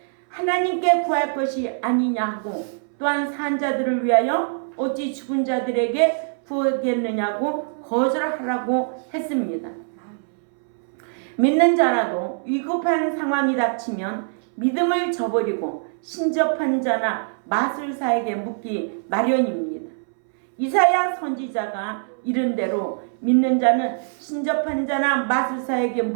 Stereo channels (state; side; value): silent; left; 63 dB below the other